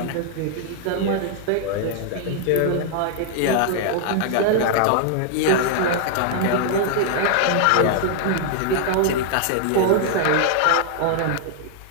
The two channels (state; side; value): different; both; correlation 0.00